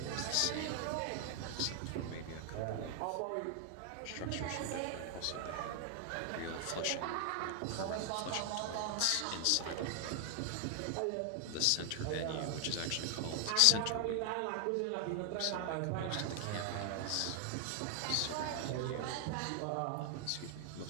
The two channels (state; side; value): different; both; correlation 0.00